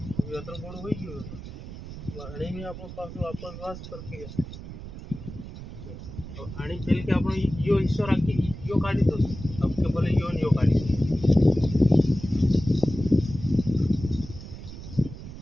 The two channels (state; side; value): noise; right; rumble, 12 dB below the sound